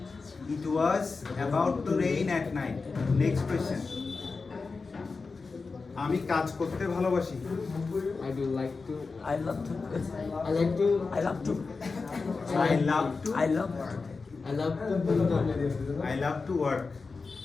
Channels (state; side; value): quieter; right; 4.3 dB